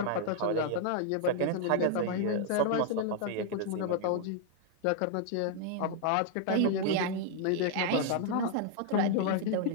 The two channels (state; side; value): different; both; correlation 0.00